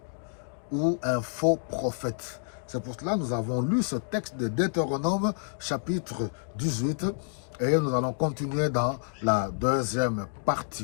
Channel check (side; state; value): right; silent; digital silence